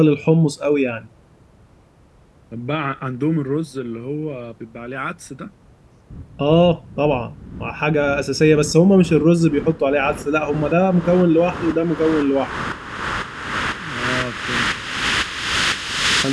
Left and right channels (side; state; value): both; identical; correlation 1.00